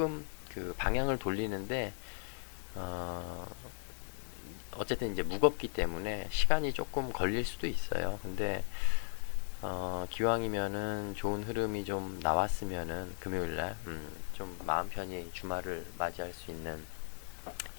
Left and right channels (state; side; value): silent; right; digital silence